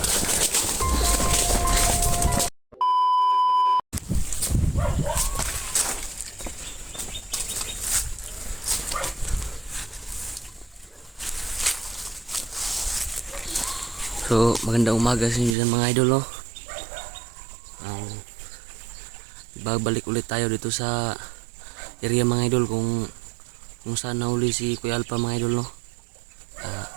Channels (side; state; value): left; drops out; at 15.6 s